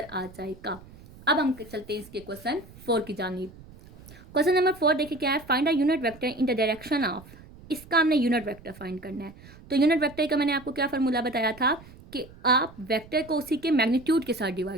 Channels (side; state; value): right; noise; rumble, 20 dB below the sound